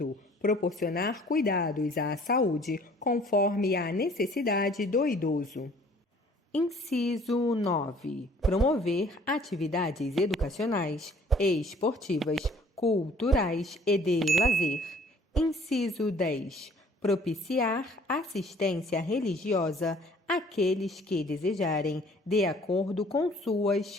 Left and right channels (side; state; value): both; normal; correlation 0.55